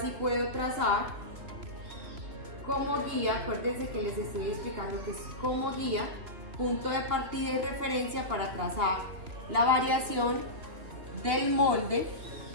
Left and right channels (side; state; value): left; late; 3.2 ms